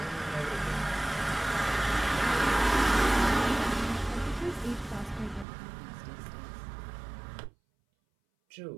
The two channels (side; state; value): left; drops out; at 5.5 s